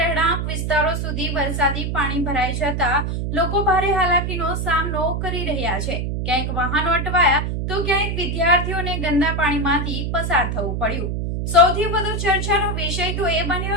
વિસ્તારો સુધી વરસાદી પાણી ભરાઈ જતા લોકો ભારે હાલાકીનો સામનો કરી રહ્યા છે। ક્યાંક વાહનો અટવાયા તો ક્યાંક વિદ્યાર્થીઓને ગંદા પાણીમાંથી પસાર થવું પડ્યું। સૌથી વધુ ચર્ચાનો વિષય તો એ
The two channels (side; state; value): right; noise; hum, 2 dB below the sound